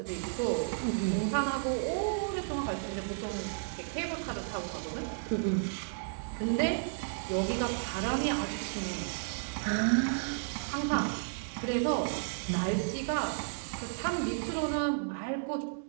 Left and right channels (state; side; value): silent; left; digital silence